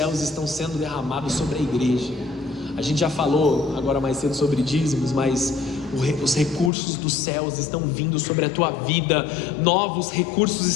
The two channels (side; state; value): right; drops out; at 6.7 s